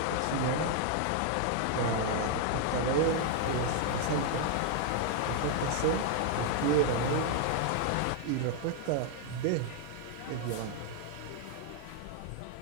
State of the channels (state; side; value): different; both; correlation 0.00